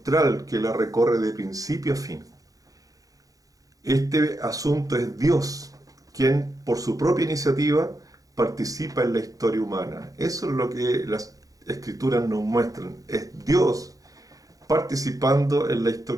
que la recorre de principio a fin. Este asunto es Dios, quien por su propia iniciativa participa en la historia humana. Eso es lo que las Escrituras nos muestran. Es Dios participando en la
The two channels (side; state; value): left; late; 0.17 ms